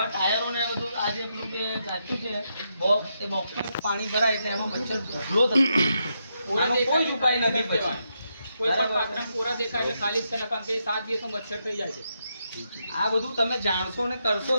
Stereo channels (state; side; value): inverted; both; correlation -0.82